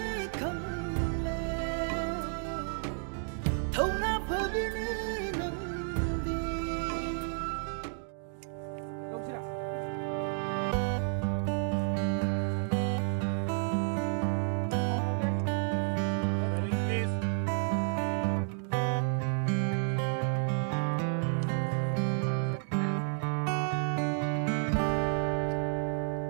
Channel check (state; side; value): silent; left; 56 dB below the other